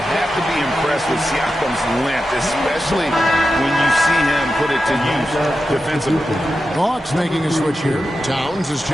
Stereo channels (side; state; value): both; normal; correlation 0.90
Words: have to be impressed with Siakam's length, especially when you see him put it to use defensively. Hawks making a switch here. Towns is